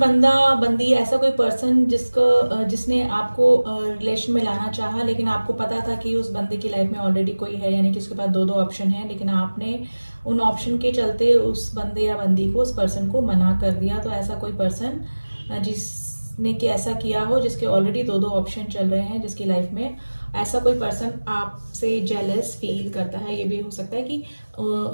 बंदी, ऐसा कोई पर्सन जिसने आपको रिलेशन में लाना चाहा, लेकिन आपको पता था कि उस बंदे की लाइफ में ऑलरेडी कोई है, यानी कि उसके पास दो ऑप्शन है, लेकिन आपने उन ऑप्शन के चलते उस बंदे या बंदी को, उस पर्सन को मना कर दिया। तो ऐसा कोई पर्सन जिसने कि ऐसा किया हो, जिसके ऑलरेडी दो ऑप्शन चल रहे हैं जिसकी लाइफ में, ऐसा कोई पर्सन आपसे जेलस फील करता है। ये भी हो सकता है कि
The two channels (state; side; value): inverted; both; correlation -1.00